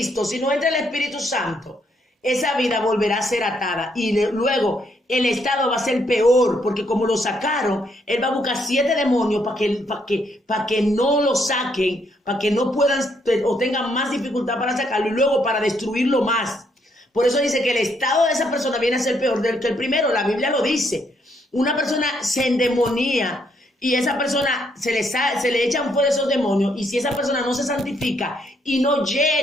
si no entra el Espíritu Santo, esa vida volverá a ser atada y luego el estado va a ser peor, porque como lo sacaron, él va a buscar 7 demonios para que no lo saquen, para que no puedan o tengan más dificultad para sacarlo y luego para destruirlo más. Por eso dice que el estado de esa persona viene a ser peor que el primero, la Biblia lo dice. Una persona se endemonía y esa persona se le echan fuera esos demonios y si esa persona no se santifica y no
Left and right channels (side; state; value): both; normal; correlation 0.73